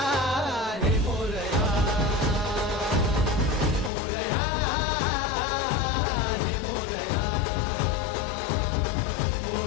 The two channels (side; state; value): right; drops out; at 3.9 s